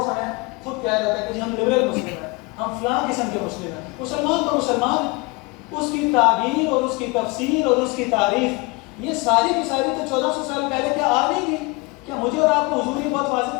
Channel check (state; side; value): quieter; right; 26.1 dB